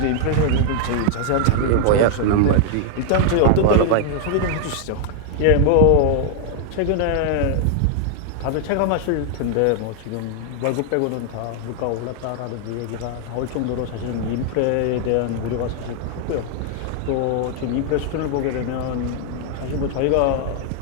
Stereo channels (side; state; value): both; different; correlation 0.00